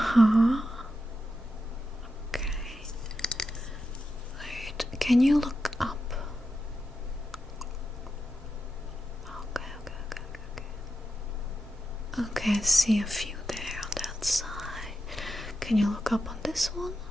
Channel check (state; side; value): normal; both; correlation 0.88